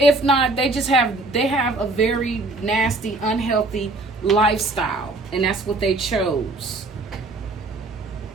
not, they have a very nasty, unhealthy lifestyle, and that's what they chose.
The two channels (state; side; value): quieter; left; 3.0 dB